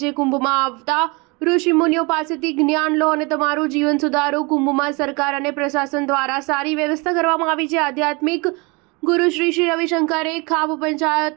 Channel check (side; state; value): left; quieter; 28.3 dB